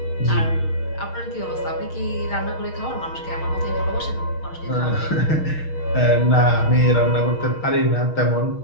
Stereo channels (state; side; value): late; right; 6.4 ms